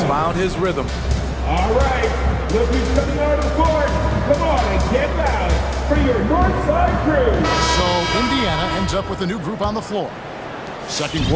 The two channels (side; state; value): both; identical; correlation 1.00